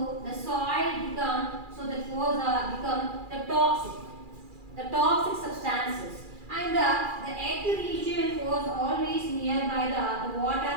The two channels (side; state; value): left; late; 2.4 ms